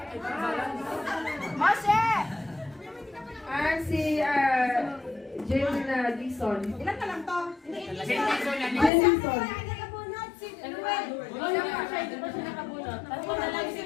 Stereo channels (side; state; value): right; drops out; at 8.9 s